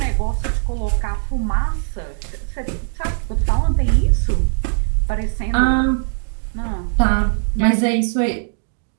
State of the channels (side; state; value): left; silent; digital silence